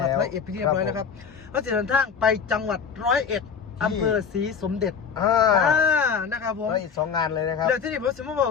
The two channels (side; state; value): right; quieter; 6.4 dB